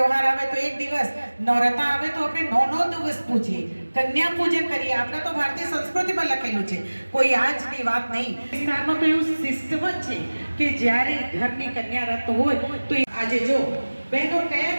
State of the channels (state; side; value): inverted; both; correlation -1.00